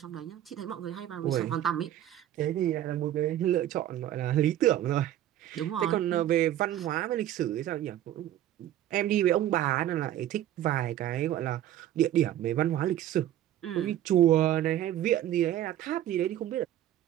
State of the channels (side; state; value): left; quieter; 12.4 dB